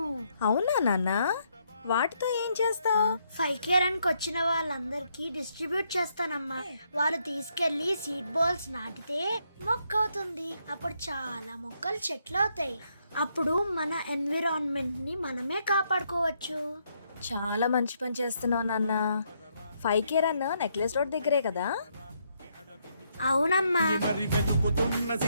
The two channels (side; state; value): both; inverted; correlation -0.75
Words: అవునా నాన్న? వాటితో ఏం చేస్తావు? 5K రన్ కి వచ్చిన వాళ్ళందరికీ డిస్ట్రిబ్యూట్ చేస్తానమ్మా. వాళ్ళు తీసుకెళ్లి సీడ్ బాల్స్ నాటితే మొక్క అవుతుంది. అప్పుడు చాలా మొక్కలు చెట్లు అవుతాయి. అప్పుడు మన ఎన్విరాన్మెంట్ ని మనమే కాపాడుకోవచ్చు. చాలా మంచి పని చేస్తున్నావు నాన్న. 5K రన్ నెక్లెస్ రోడ్ దగ్గరే కదా? అవునమ్మా. మరి వెతుకుతున్న